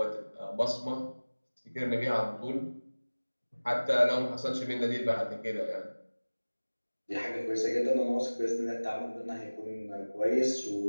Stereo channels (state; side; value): inverted; both; correlation -1.00